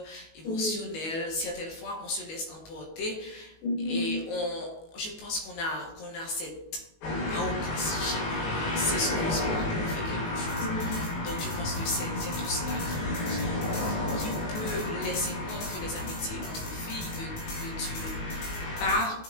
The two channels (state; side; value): late; right; 19 ms